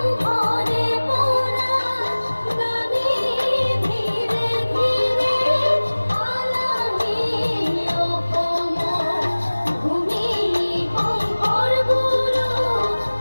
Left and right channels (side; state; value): both; inverted; correlation -1.00